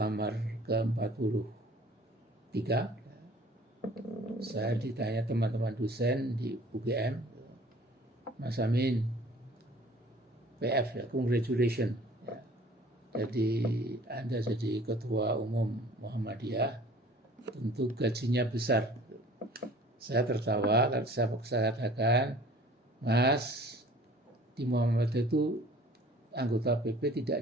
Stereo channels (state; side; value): normal; both; correlation 0.49